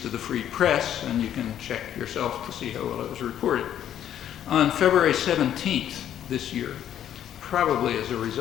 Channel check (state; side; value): quieter; right; 10.5 dB